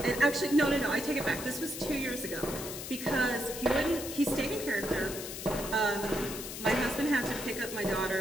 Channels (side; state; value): left; noise; hiss, 8 dB below the sound